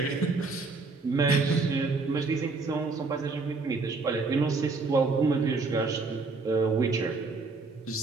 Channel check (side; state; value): left; quieter; 4.0 dB